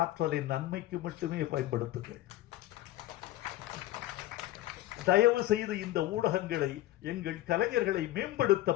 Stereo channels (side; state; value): right; quieter; 15.4 dB